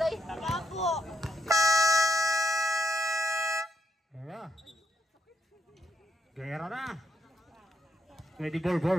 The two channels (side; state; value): both; normal; correlation 0.79